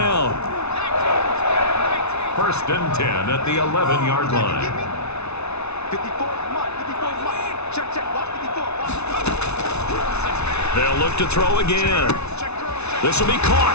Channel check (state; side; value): late; right; 0.81 ms